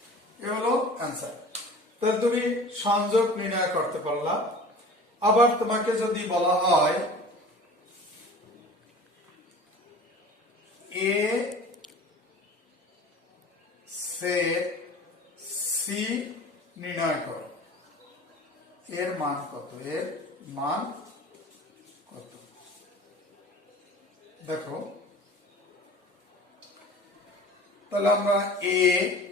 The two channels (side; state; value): both; normal; correlation 0.42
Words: এ হলো অ্যান্সার। তাহলে তুমি সংযোগ নির্ণয় করতে পারলা। আবার তোমাকে যদি বলা হয় এ সেট সি নির্ণয় করো, এর মান কত, এর মান কত। দেখো তাহলে আমরা এ